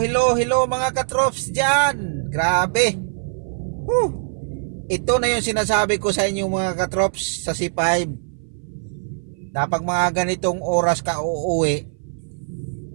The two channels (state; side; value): silent; left; 58 dB below the other